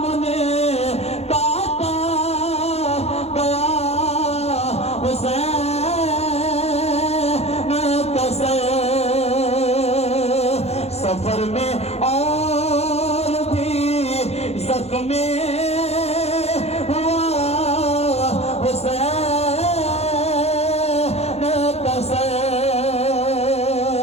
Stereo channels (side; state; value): right; late; 0.31 ms